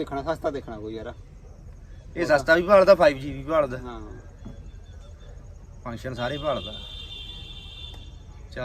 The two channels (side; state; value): both; identical; correlation 1.00